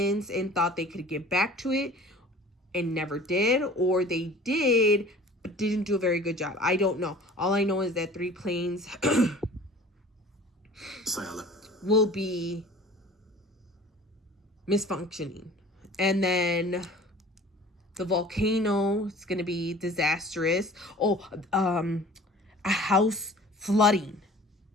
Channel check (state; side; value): normal; both; correlation 0.45